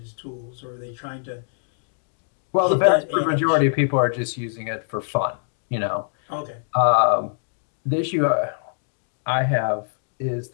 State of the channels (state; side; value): silent; right; digital silence